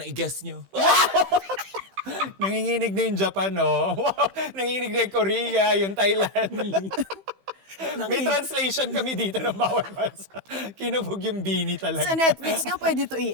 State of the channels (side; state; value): left; late; 15 ms